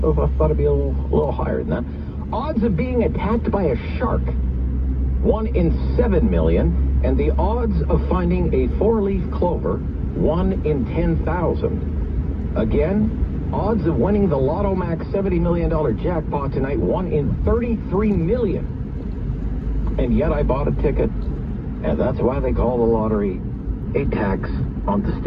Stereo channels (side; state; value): both; identical; correlation 1.00